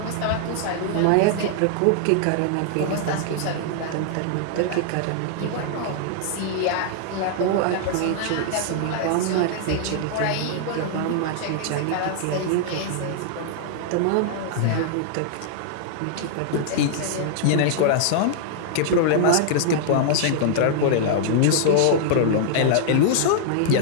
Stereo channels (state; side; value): different; both; correlation -0.01